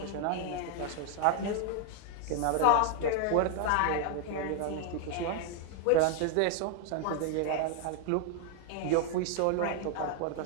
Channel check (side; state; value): both; different; correlation 0.00